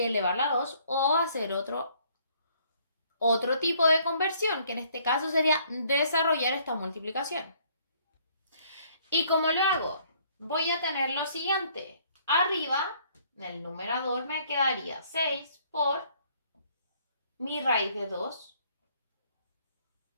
elevarla a 2 o hacer otro tipo de conversión, que en este caso sería desarrollar esta multiplicación. ¿Y cómo lo hago? Voy a tener lo siguiente. Arriba, en el numerador, me quedaría 6 por mi raíz de 2.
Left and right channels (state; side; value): inverted; both; correlation -0.63